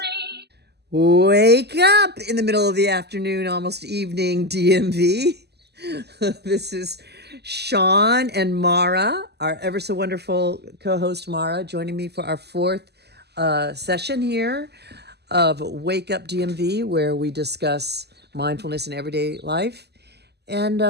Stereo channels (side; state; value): left; late; 0.48 ms